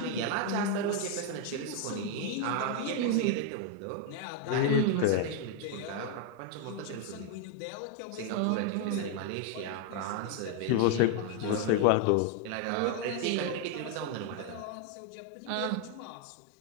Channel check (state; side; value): different; both; correlation 0.00